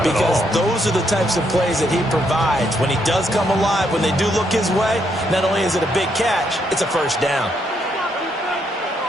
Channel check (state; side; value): normal; both; correlation 0.75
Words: because at all. those are the types of plays that he provides. When he does come alive, when they do look his way, not only is it a big catch, it's a 1st down.